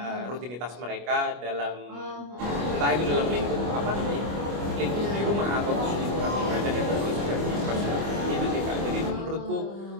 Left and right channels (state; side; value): late; left; 25 ms